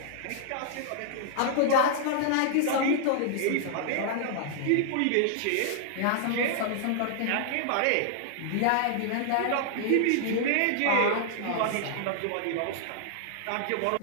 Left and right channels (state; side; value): different; both; correlation -0.01